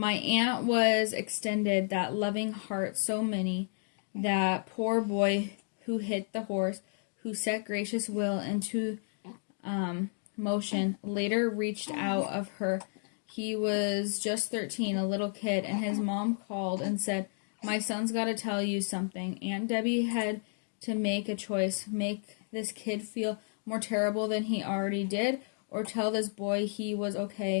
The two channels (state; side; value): silent; right; 57 dB below the other